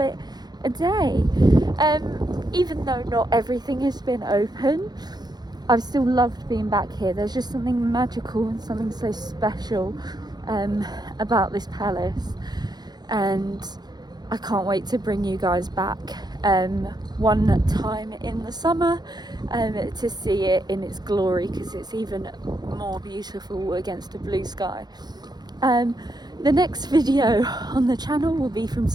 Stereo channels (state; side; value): late; left; 0.20 ms